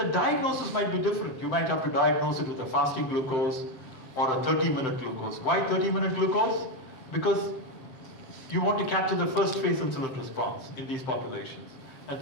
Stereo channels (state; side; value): late; right; 7.8 ms